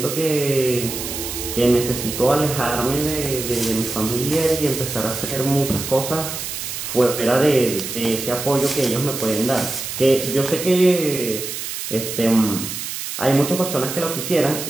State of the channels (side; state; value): right; noise; hiss, 6 dB below the sound